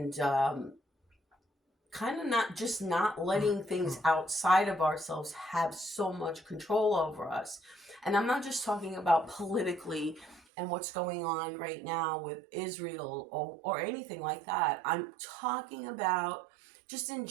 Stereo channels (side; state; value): left; drops out; at 10.4 s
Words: kind of not letting things outside of ourselves have so much control over us. And I'm not just talking about politically and what's going on right now with Israel or anything like that. I'm talking about just in